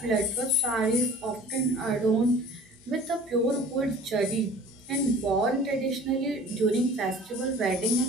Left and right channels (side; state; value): both; normal; correlation 0.45